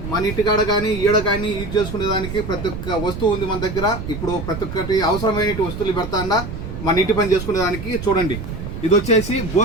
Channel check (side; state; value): right; noise; rumble, 8 dB below the sound